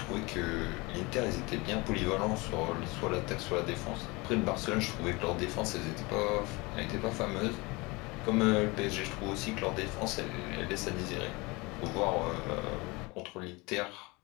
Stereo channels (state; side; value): quieter; right; 25.1 dB